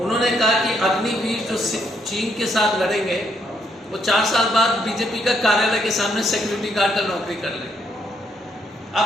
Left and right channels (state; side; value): normal; both; correlation 0.74